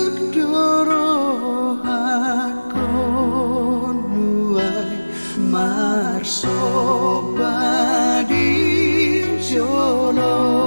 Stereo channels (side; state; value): both; inverted; correlation -1.00